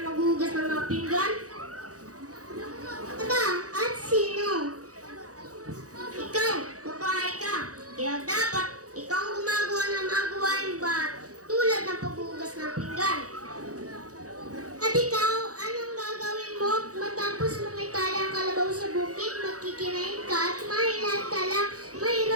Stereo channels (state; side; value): late; left; 0.66 ms